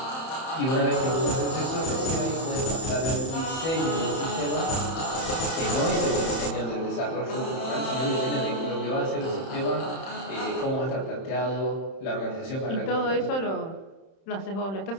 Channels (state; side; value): late; right; 31 ms